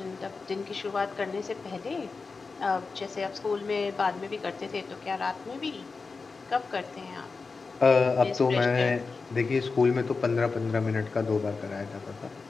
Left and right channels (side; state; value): right; quieter; 4.4 dB